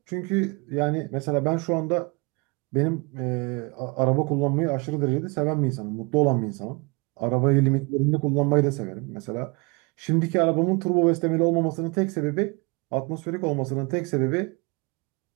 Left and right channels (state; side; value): quieter; left; 29.3 dB